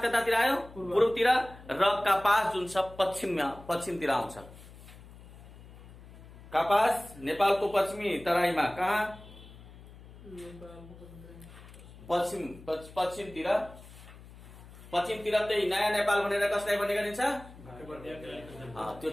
कतातिर आयो? पूर्वतिर। र कपास जुन छ पश्चिमतिर आउँछ। कपास नेपालको पश्चिमी तराईमा कहाँ? पश्चिमतिर त्यही नयाँ नेपाल भनेर कसलाई भन्ने गरिन्छ? त्यो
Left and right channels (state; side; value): noise; left; hum, 19 dB below the sound